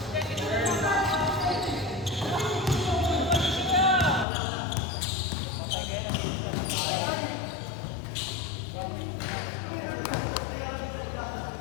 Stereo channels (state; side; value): drops out; right; at 4.2 s